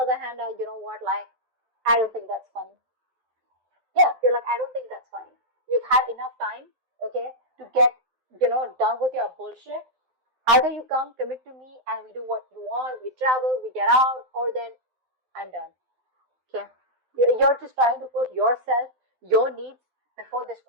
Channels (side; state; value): left; late; 12 ms